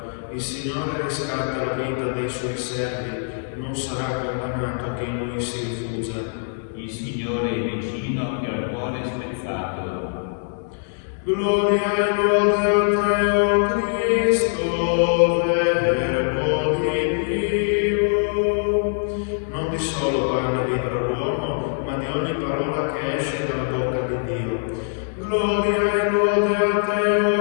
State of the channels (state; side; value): silent; right; digital silence